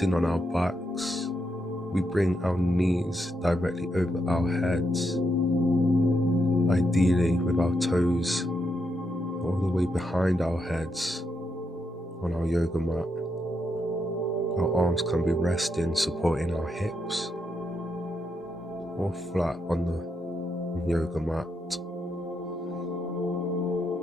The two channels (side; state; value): both; normal; correlation 0.81